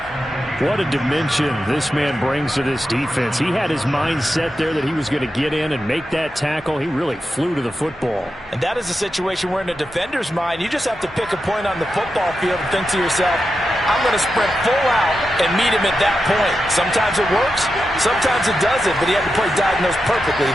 What a dimension this man brings to this defense. He had his mind set there that he was going to get in and make that tackle. He really flew to the football. And that is a situation where in a defender's mind, you just have to pick a point on the football field and think to yourself, I'm going to sprint full out and meet him at that point. Sometimes it works, sometimes it doesn't, but he had the play diagnosed perfectly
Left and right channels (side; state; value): both; normal; correlation 0.89